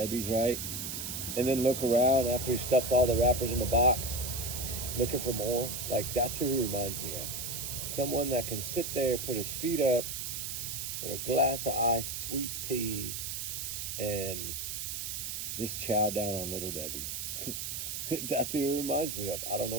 right? And then look around after he stuffed all the wrappers in the box, looking for more. Like, that's who he reminds me of. Someone that can sit there, put his feet up with a glass of iced sweet tea and just chow down on little Debbie's. That's who he reminds me of. I don't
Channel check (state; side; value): noise; right; hiss, 4 dB below the sound